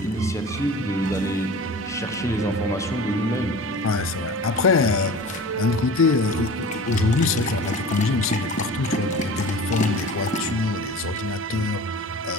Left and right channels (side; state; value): both; normal; correlation 0.38